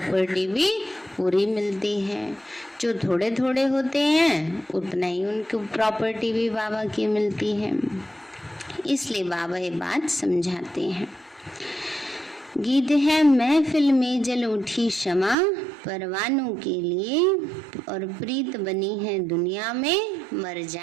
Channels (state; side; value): drops out; left; at 15.4 s